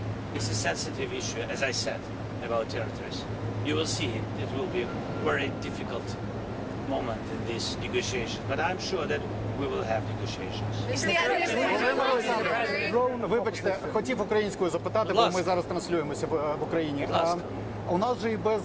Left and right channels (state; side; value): identical; both; correlation 1.00